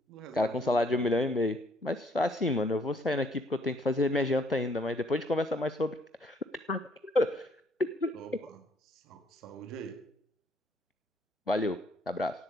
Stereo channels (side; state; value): both; normal; correlation 0.65